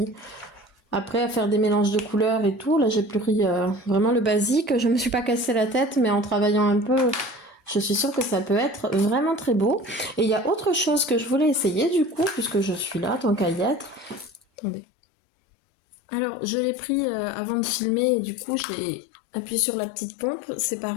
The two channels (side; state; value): right; drops out; at 14.4 s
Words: Après, à faire des mélanges de couleurs et tout, là j'ai pris vraiment le basique. Je me suis pas cassé la tête, mais en travaillant un peu, je suis sûre que ça peut être vraiment très beau. Et il y a autre chose que je voulais essayer du coup, puisque je suis là, tant qu'à y être. Attendez. Alors, je l'ai pris avant de filmer, et du coup j'ai appuyé sur la petite pompe. C'est